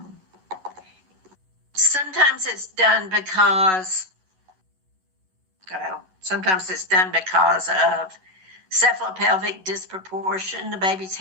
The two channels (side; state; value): left; late; 11 ms